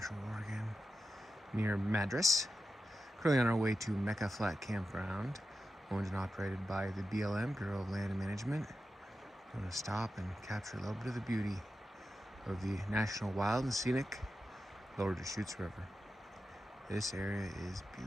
Oregon near Madras. Currently on our way to Mecca Flat Campground, owned and operated by the BLM, Bureau of Land Management. I'm going to stop and capture a little bit of the beauty of the National Wild and Scenic Lower Deschutes River. This area is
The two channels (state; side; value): normal; both; correlation 0.91